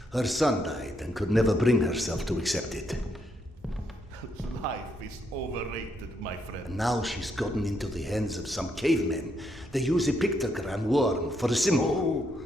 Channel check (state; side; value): normal; both; correlation 0.76